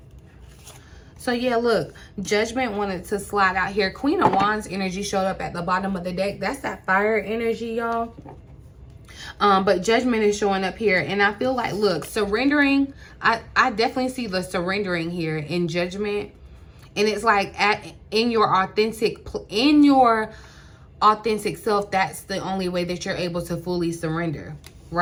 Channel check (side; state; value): both; identical; correlation 1.00